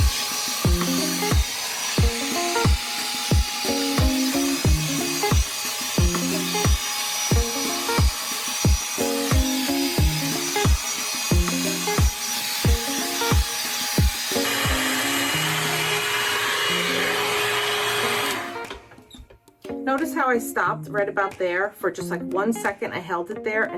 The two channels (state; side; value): identical; both; correlation 1.00